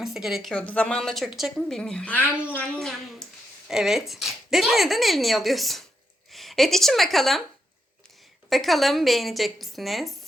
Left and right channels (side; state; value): both; normal; correlation 0.81